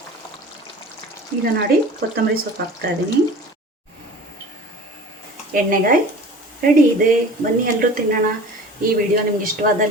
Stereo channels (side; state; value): both; normal; correlation 0.40